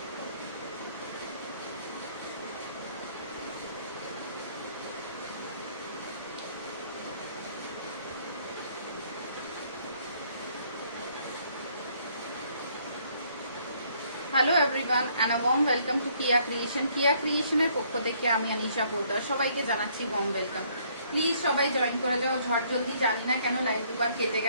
Hello everyone and a warm welcome to Kiya creation. Kiya ক্রিয়েশনের পক্ষ থেকে আমি আনিশা পোদ্দার সবাইকে জানাচ্ছি ওয়ার্ম ওয়েলকাম। প্লিজ সবাই জয়েন করে যাও ঝট জলদি। জানি না কেন লাইভ দুবার কেটে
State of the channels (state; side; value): inverted; both; correlation -0.65